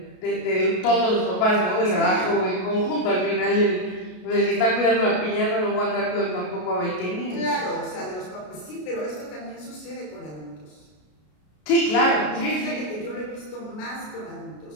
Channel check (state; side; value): late; right; 33 ms